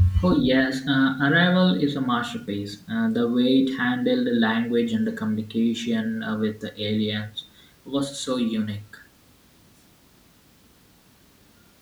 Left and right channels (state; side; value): identical; both; correlation 1.00